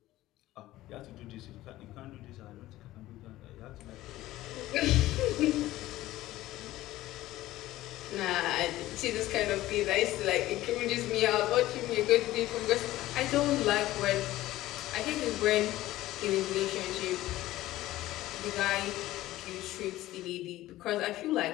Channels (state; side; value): quieter; right; 16.0 dB